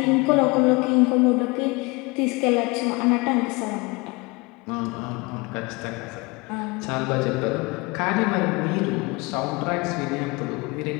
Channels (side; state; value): right; quieter; 26.1 dB